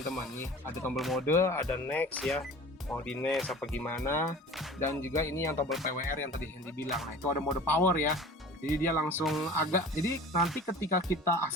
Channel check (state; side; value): normal; both; correlation 0.41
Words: Nih ada tombol mode, ada next ya, mau di next apa gimana, dan juga ini yang tombol PWR yang tadi Hendy bilang. Nah itu ada mode power ya, jadi dia langsung agak, jadi nanti ketika kita